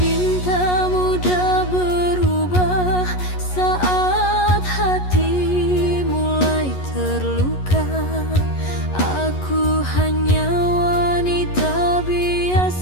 mudah berubah saat hati mulai terluka? Aku hanya wanita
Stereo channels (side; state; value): right; late; 11 ms